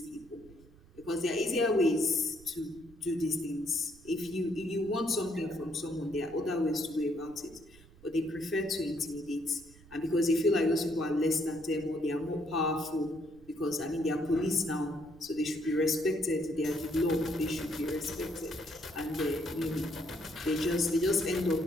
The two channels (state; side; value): noise; right; rumble, 23 dB below the sound